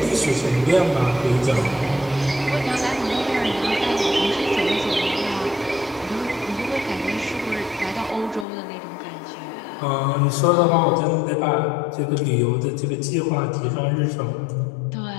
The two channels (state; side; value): drops out; right; at 8.5 s